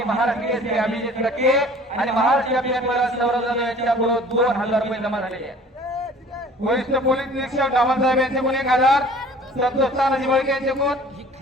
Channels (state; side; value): normal; both; correlation 0.48